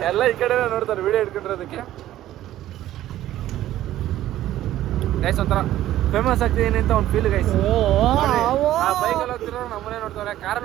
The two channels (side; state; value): left; quieter; 13.6 dB